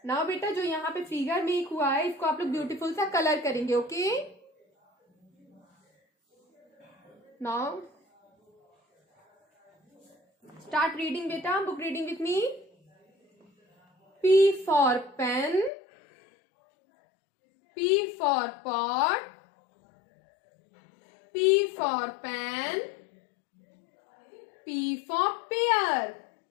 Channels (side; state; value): right; drops out; at 15.7 s